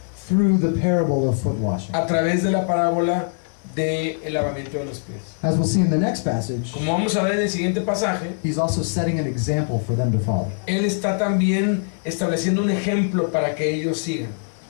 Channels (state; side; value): silent; right; digital silence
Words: through the parable of foot washing. a través de la parábola del lavamiento de los pies. As we'll see in the next passage, Como vamos a ver en el siguiente pasaje, he's also setting an example for them to follow. Él está también estableciendo un ejemplo para que ellos sigan.